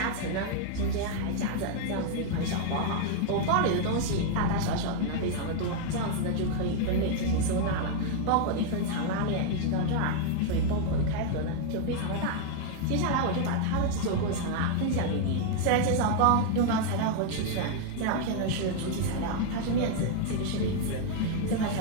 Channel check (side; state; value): both; different; correlation 0.00